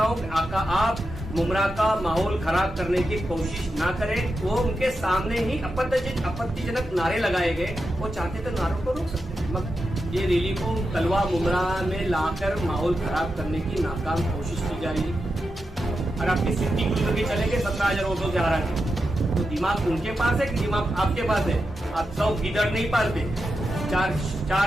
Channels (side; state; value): both; normal; correlation 0.88